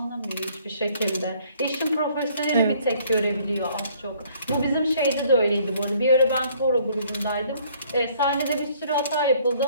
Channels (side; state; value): both; inverted; correlation -0.61